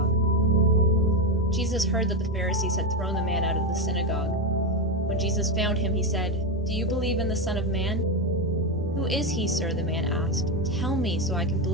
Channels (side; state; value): both; normal; correlation 0.11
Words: Jesus heard that the Pharisees had thrown the man out of the synagogue. When Jesus found him, he said, "Do you believe in the Son of Man?" "Who is he, sir?" the man asked. "Tell me so I can